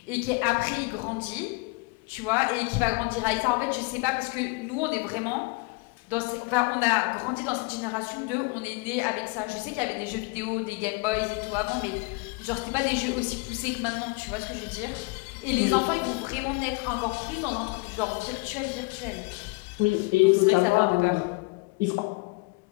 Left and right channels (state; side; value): quieter; right; 27.8 dB